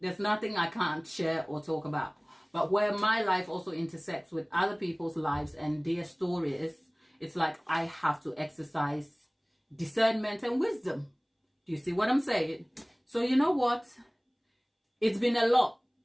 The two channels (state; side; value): identical; both; correlation 1.00